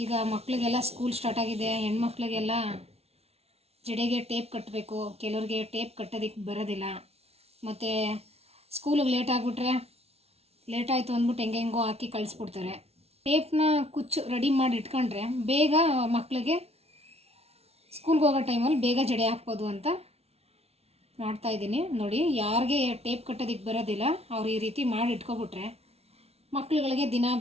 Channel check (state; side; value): late; left; 0.30 ms